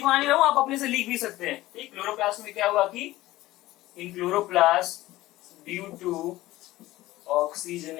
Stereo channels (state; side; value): quieter; right; 17.0 dB